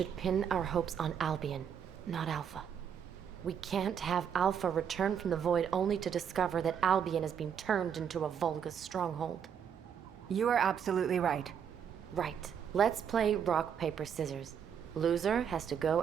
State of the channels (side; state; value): left; quieter; 7.9 dB